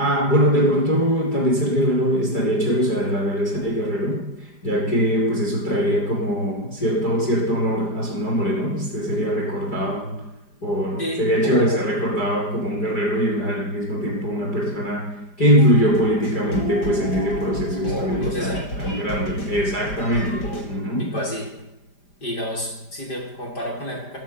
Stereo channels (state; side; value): late; right; 5.0 ms